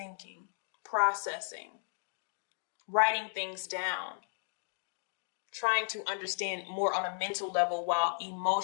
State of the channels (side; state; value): right; silent; digital silence